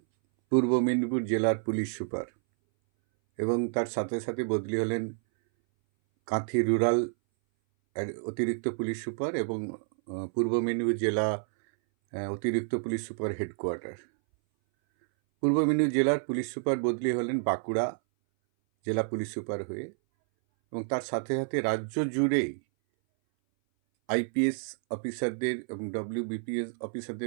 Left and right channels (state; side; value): silent; left; 58 dB below the other